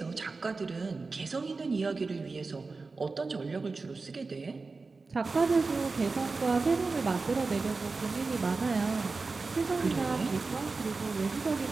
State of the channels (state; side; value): quieter; left; 4.0 dB